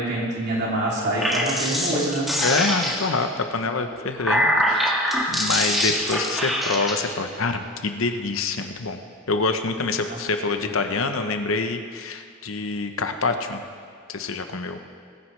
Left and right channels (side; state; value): both; normal; correlation 0.26